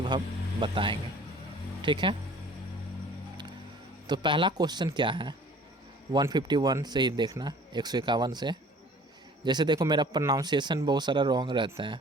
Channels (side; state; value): both; normal; correlation 0.50